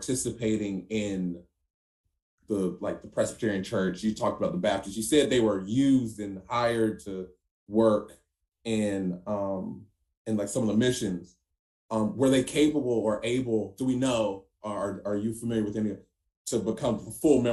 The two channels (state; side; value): identical; both; correlation 1.00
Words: in the Presbyterian Church? You talked about the Baptists. You said they were used and hired to work in like some of the missions. Were they capable or able, do we know, are you familiar with any, to become full